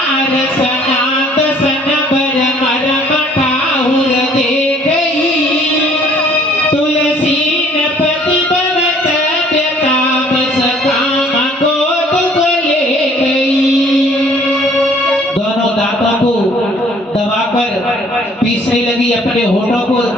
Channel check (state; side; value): normal; both; correlation 0.57